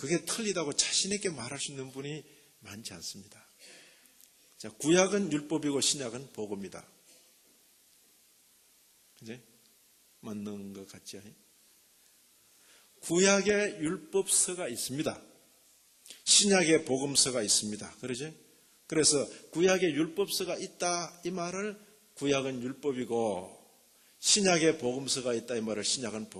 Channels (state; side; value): identical; both; correlation 1.00